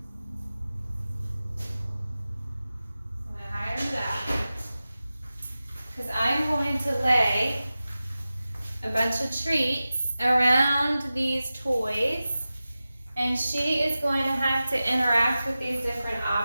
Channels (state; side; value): inverted; both; correlation -0.95